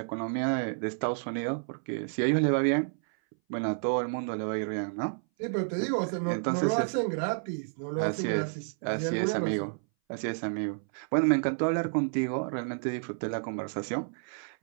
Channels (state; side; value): silent; left; 58 dB below the other